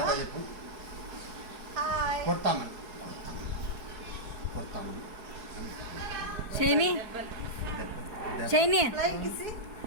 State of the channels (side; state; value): left; late; 4.7 ms